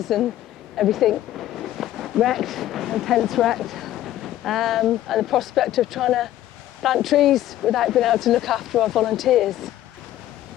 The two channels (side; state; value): right; quieter; 13.4 dB